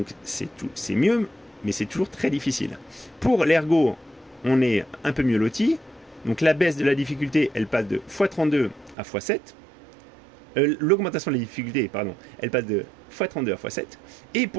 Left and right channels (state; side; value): drops out; left; at 9.0 s